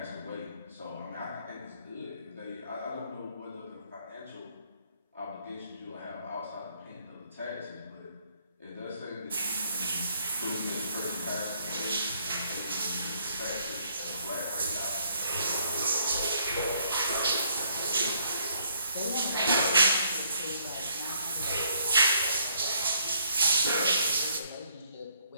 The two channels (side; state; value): both; inverted; correlation -0.68